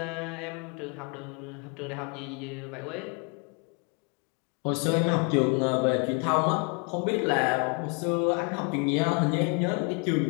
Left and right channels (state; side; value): quieter; right; 34.8 dB